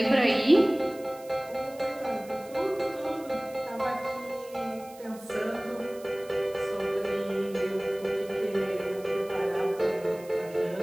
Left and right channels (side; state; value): right; noise; hiss, 22 dB below the sound